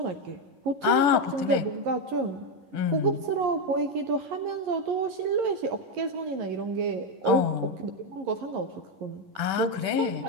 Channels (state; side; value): late; left; 10 ms